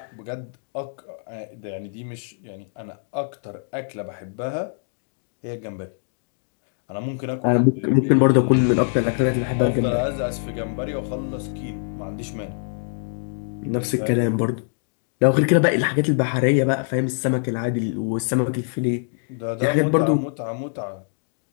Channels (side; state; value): right; silent; digital silence